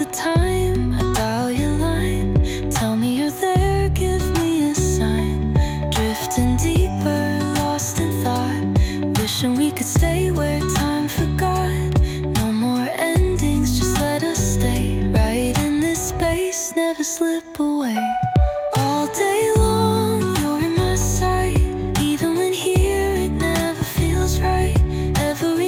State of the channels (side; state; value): both; identical; correlation 1.00